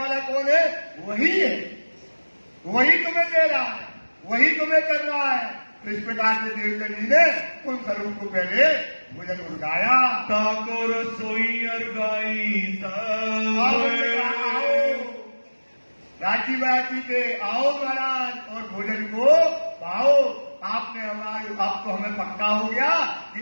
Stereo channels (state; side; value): inverted; both; correlation -1.00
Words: कौन है, वही है, वही तुम्हें दे रहा है, वही तुम्हें कर रहा है। तो इस प्रकार से देवचंद जी ने उन स्वरूप को पहले भोजन उड़गाया। ताको रसोई अरगाई राजी बाजी के आओ महाराज और भोजन को पाओ। आपने हमारे, अब तो हमें पक्का हो गया कि